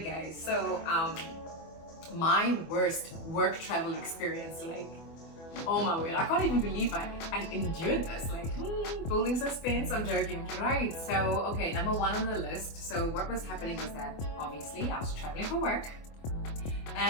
guys? So my worst work travel experience, like, oh my word, I can't even believe I endured this. Like, building suspense, I'm joking. Right, so, okay, number 1 on the list. So what was happening was that, obviously, I was traveling for work.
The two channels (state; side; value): late; right; 24 ms